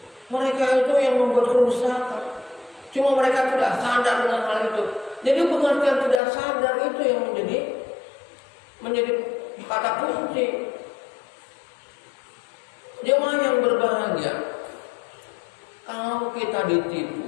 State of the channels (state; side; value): drops out; right; at 6.2 s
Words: Mereka itu yang membuat kerusakan. Cuma mereka tidak sadar dengan hal itu. Jadi pengertian tidak sadar itu yang menjadi kata kunci. Jemaah yang berbahagia, kalau kalau kita